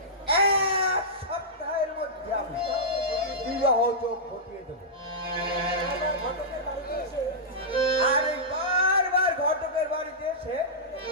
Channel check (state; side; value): normal; both; correlation -0.13